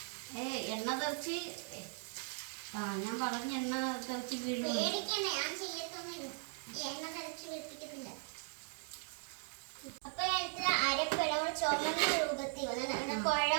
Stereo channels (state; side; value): silent; left; 52 dB below the other